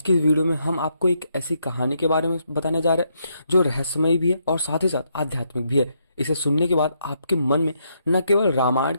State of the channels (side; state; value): both; inverted; correlation -0.77